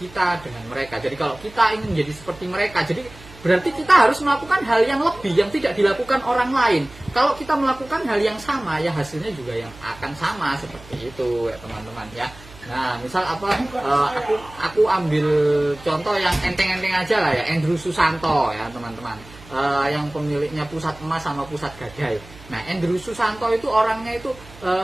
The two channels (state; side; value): noise; right; hum, 20 dB below the sound